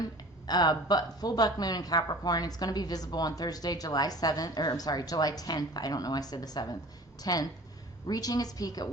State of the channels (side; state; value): both; normal; correlation 0.43